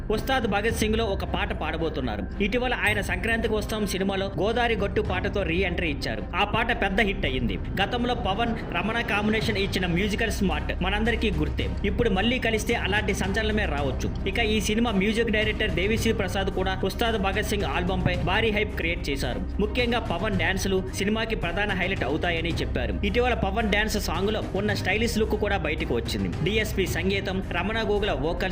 ఉస్తాద్ భగత్ సింగ్ లో ఒక పాట పాడబోతున్నారు. ఇటీవల ఆయన సంక్రాంతికి వస్తాం సినిమాలో గోదారి గట్టు పాటతో రీ ఎంట్రీ ఇచ్చారు. ఆ పాట పెద్ద హిట్ అయ్యింది. గతంలో పవన్ రమణ కాంబినేషన్ ఇచ్చిన మ్యూజికల్ స్మార్ట్ మనందరికీ గుర్తే. ఇప్పుడు మళ్లీ కలిస్తే అలాంటి సంచలనమే రావచ్చు. ఇక ఈ cinema music director Devi Sri Prasad కూడా ఉస్తాద్ భగత్ సింగ్ ఆల్బమ్ పై భారీ హైప్ క్రియేట్ చేశారు. ముఖ్యంగా పవన్ డాన్సులు సినిమాకి ప్రధాన హైలైట్ అవుతాయని చెప్పారు. ఇటీవల పవన్ డాన్స్ సాంగ్ లో ఉన్న స్టైలిష్ లుక్ కూడా బయటకు వచ్చింది. డిఎస్పి సంగీతం, Ramana Gogula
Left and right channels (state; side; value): identical; both; correlation 1.00